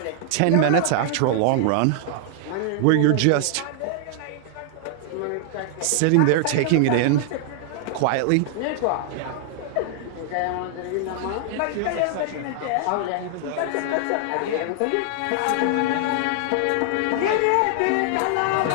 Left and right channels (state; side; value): different; both; correlation -0.01